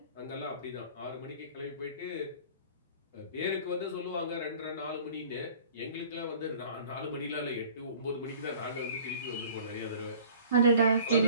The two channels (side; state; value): both; inverted; correlation -0.48